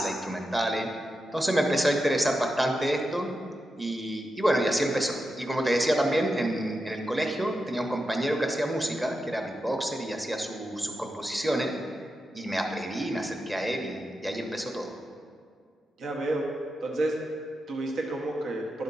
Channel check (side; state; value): both; normal; correlation 0.88